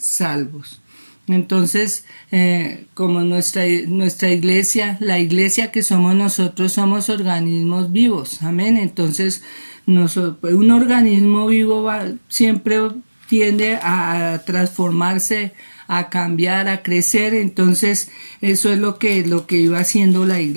Entonces, como nuestra iglesia, la iglesia que somos nosotros, somos organismos vivos, amén. Entonces, un organismo vivo siempre tiende a transformarse, a cambiar, a crecer. Entonces eso es lo que iba haciendo la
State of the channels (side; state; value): both; inverted; correlation -1.00